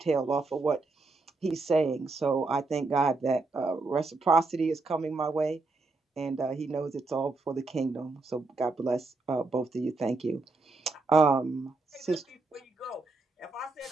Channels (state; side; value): quieter; left; 3.6 dB